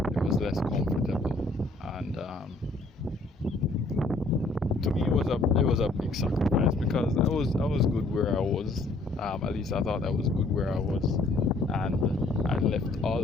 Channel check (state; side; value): quieter; right; 3.1 dB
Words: It was less comfortable, and to me it was a big sacrifice, because I was good where I was. At least I thought I was good where I was, and I left all